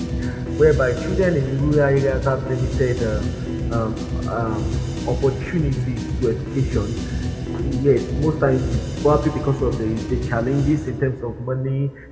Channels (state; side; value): identical; both; correlation 1.00